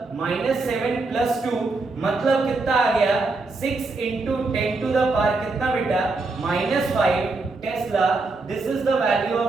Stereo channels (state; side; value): quieter; left; 3.6 dB